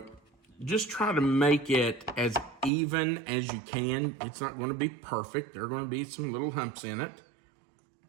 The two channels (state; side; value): drops out; left; at 2.7 s